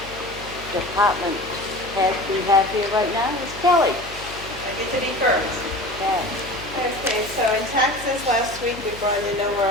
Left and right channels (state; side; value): noise; left; hum, 16 dB below the sound